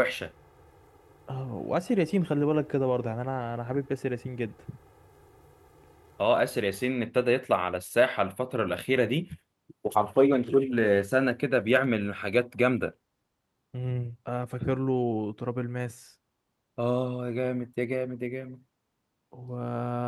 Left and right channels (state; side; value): identical; both; correlation 1.00